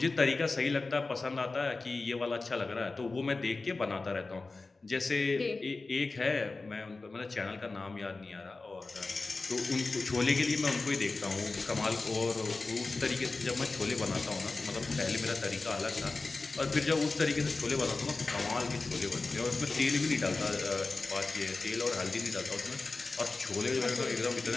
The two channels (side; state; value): right; quieter; 3.6 dB